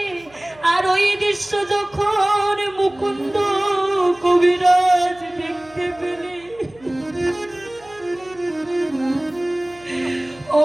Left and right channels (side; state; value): right; noise; hum, 27 dB below the sound